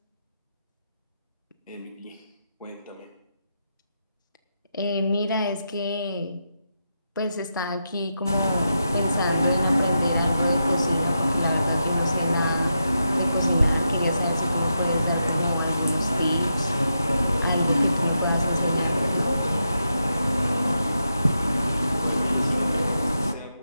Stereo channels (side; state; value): both; inverted; correlation -0.85